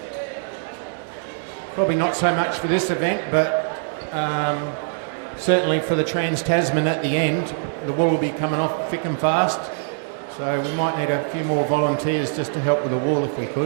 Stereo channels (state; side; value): silent; left; 64 dB below the other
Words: probably not so much for this event, but certainly for the Trans-Tasman at the end, the wool will be coming off thick and fast. So we might need a few more volunteers just to help with the wool if we